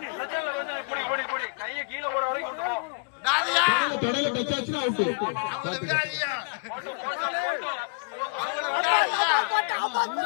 அவங்கள விடாதியா, அவங்கள விடாதியா.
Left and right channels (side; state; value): right; quieter; 35.9 dB